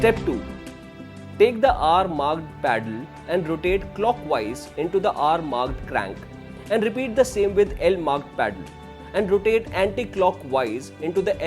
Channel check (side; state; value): both; identical; correlation 1.00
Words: Step 2. Take the R-marked paddle and rotate clockwise into the R-marked crank and repeat the same with L-marked paddle and rotate anti-clockwise into the